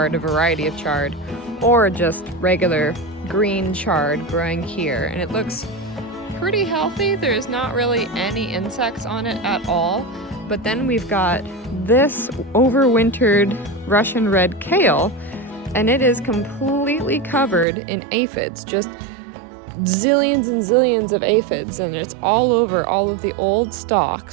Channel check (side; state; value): left; drops out; at 17.7 s